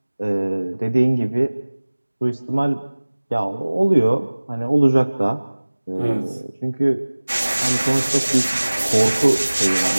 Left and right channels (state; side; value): inverted; both; correlation -1.00